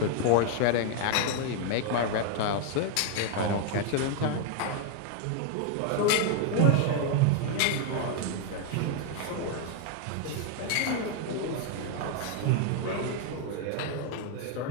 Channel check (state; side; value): different; both; correlation 0.00